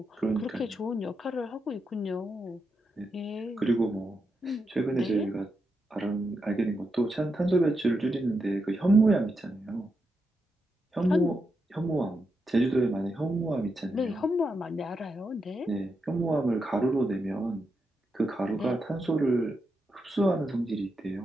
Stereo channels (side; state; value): both; normal; correlation 0.85